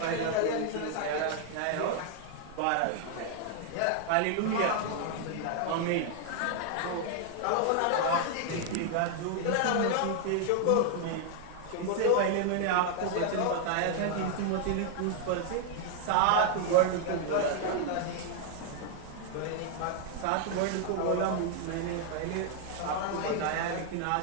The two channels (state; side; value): different; both; correlation 0.00